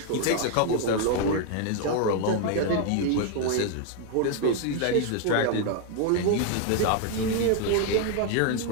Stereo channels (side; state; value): both; different; correlation 0.00